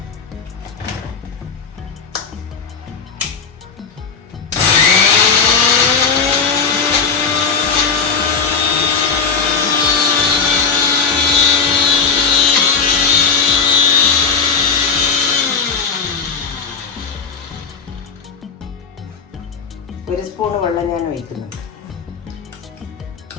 ഒരു സ്പൂൺ വെള്ളം ഞാൻ ഒഴിക്കുന്നുണ്ട്.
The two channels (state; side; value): quieter; right; 5.6 dB